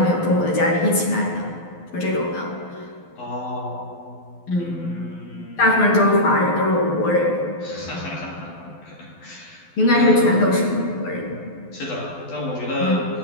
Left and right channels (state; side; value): late; right; 12 ms